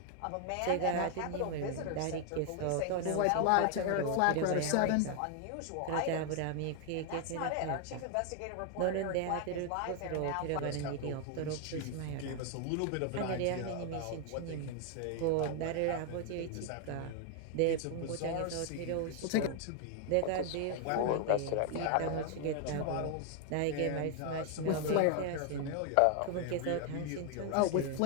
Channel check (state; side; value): different; both; correlation 0.00